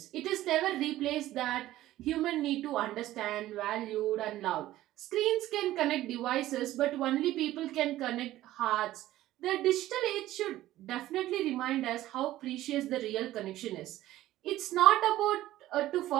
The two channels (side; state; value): left; quieter; 14.9 dB